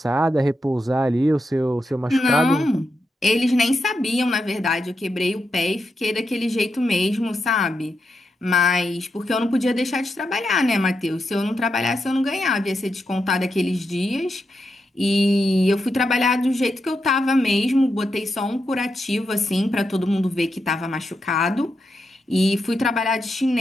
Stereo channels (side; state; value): both; normal; correlation 0.85